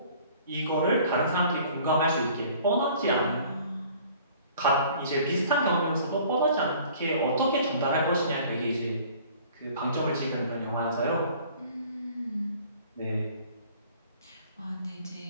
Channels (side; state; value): both; inverted; correlation -0.52